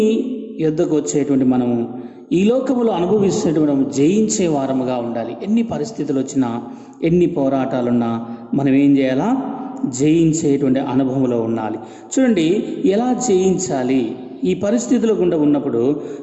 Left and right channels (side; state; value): both; identical; correlation 1.00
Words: యొద్దకు వచ్చేటువంటి మనము ఈ లోకములో అనుభవిస్తున్నటువంటి మనం జయించే వారముగా ఉండాలి. ఎన్ని పరిస్థితులు వచ్చినా, ఎన్ని పోరాటాలున్నా మనం ఏం చేయాలా? జయించేటువంటి అనుభవంలో ఉండాలి. చూడండి, ఎలా జయించాలి? ఈ పరిస్థితుల గుండా ఉన్నప్పుడు,